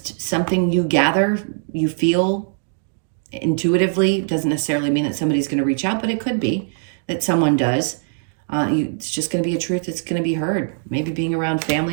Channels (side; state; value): left; silent; digital silence